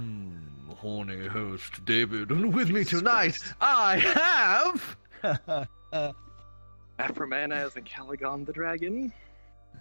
horny host, David, and with me tonight, I have... Afromana as Ancalagon the dragon.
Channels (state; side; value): inverted; both; correlation -1.00